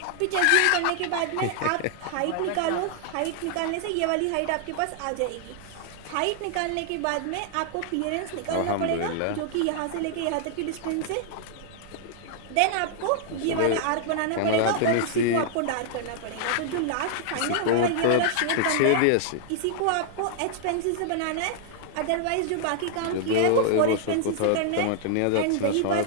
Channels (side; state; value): both; different; correlation -0.01